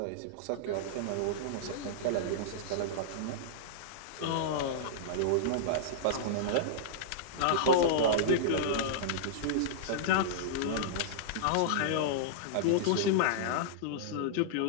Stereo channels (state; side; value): different; both; correlation -0.02